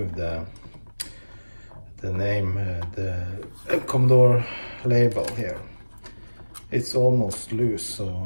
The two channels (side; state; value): both; inverted; correlation -1.00